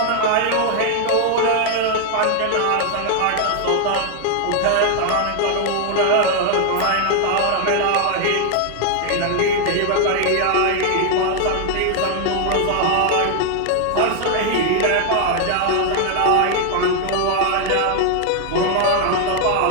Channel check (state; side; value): different; both; correlation 0.00